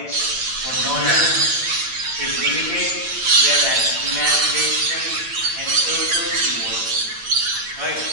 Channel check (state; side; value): late; left; 8.9 ms